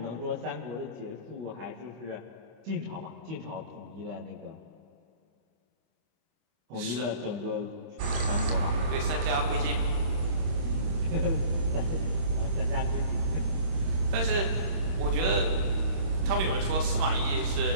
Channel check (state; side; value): late; left; 26 ms